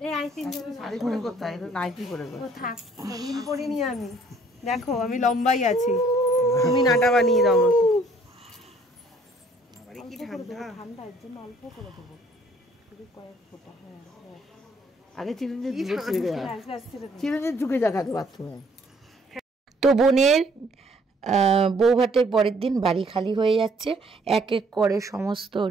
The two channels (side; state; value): both; normal; correlation 0.61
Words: এই আইসিং শাড়ি পরে করতে হয়, নাইটি পরে করতে। থাক, হিল পরিনি আমি। দেখো আমি লম্বাই আছি, তুমি নাটা বানিয়ে দাও আমাকে। আরে কি ঠান্ডা, ঠান্ডা এর জন্য অল্প করে দেবো, শুধু কয়েক ফোঁটা। হ্যাঁ আগে চিরঞ্জিত ঝুঁকে দেখাতে বাথরুমে। তো বোনের বউ ভাতের পরের দিন বাড়ি খালি হয়ে যাচ্ছে। এক এক করে সমস্ত